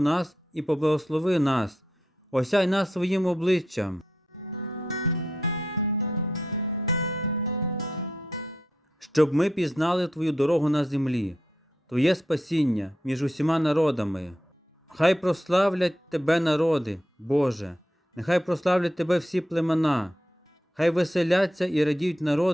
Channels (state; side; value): normal; both; correlation 0.82